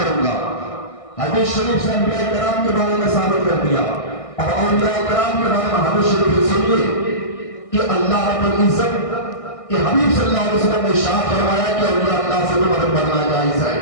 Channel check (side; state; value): right; late; 1.6 ms